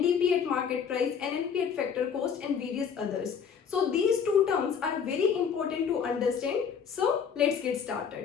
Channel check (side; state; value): right; quieter; 7.0 dB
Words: at market price, NNP at factor cost and various others. So these two terms are very important to understand. So let's get